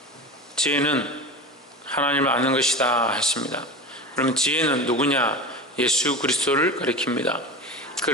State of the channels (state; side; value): normal; both; correlation 0.28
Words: 하나님을 아는 것이다 했습니다. 그러면 지혜는 누구냐? 예수 그리스도를 가리킵니다.